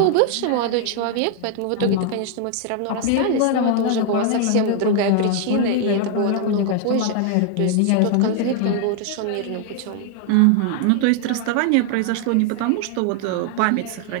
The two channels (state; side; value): different; both; correlation 0.00